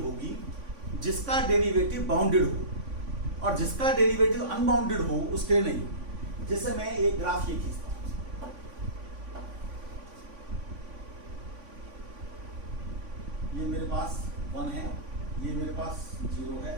होगी जिसका डेरिवेटिव बाउंडेड हो, और जिसका डेरिवेटिव अनबाउंडेड हो उसके लिए नहीं होगी। जैसे मैं एक ग्राफ ये खींचता हूं, ये मेरे पास 1 है, ये मेरे पास 0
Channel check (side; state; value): left; late; 3.5 ms